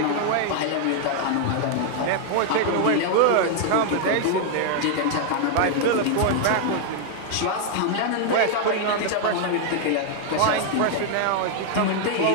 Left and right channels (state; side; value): different; both; correlation 0.00